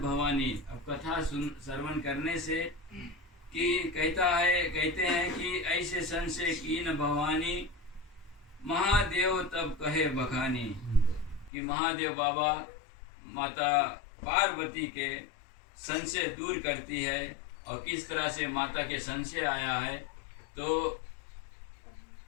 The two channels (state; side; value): drops out; right; at 11.5 s